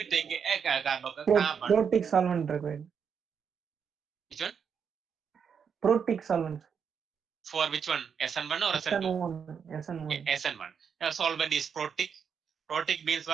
take a carbon. Protic solvent required. Which one? Protic solvent. For which one? SN1 or SN2? SN1. SN1. The solvent is protic. Protic means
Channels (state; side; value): quieter; left; 6.9 dB